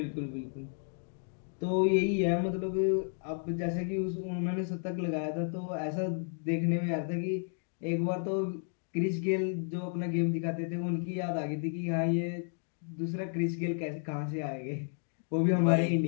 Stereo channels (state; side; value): silent; right; 56 dB below the other